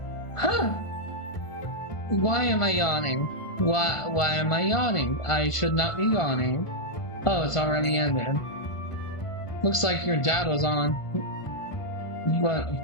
Huh! Why am I yawning? Why am I yawning? I should not be yawning. Oh, it's already ended. Looks like your dad was on, but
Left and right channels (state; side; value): late; right; 1.5 ms